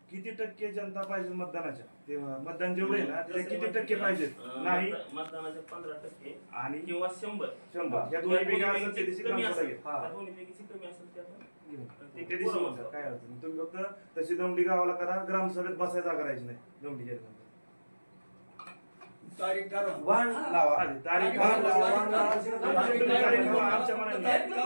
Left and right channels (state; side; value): inverted; both; correlation -1.00